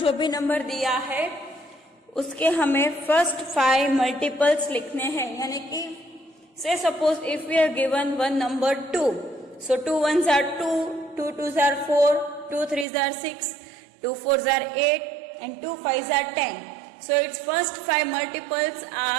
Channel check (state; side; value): drops out; left; at 12.9 s